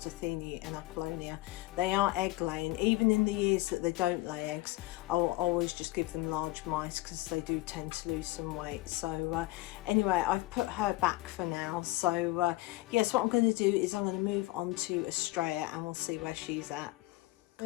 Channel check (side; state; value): right; quieter; 19.4 dB